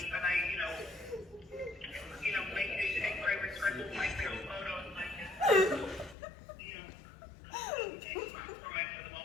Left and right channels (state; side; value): drops out; right; at 6.2 s